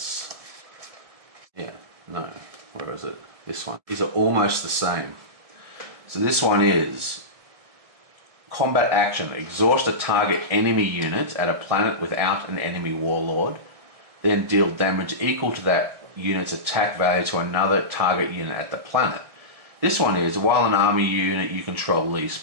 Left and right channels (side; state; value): left; late; 1.7 ms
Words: Yeah, no. Where is it? This one. These are almost the same. So this one is... Combat action. Exhaust a target enemy unit at a planet without an enemy Warlord. Then deal damage equal to that unit's attack value to another target unit at the planet. This one is, while an army unit you control leaves